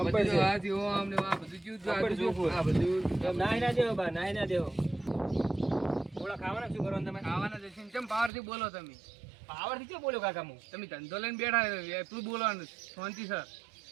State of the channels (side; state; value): left; drops out; at 8.3 s